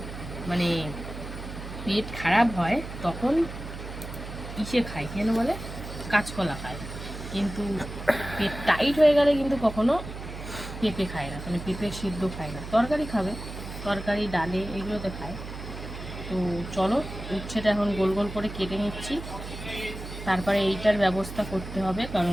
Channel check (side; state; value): right; noise; hum, 10 dB below the sound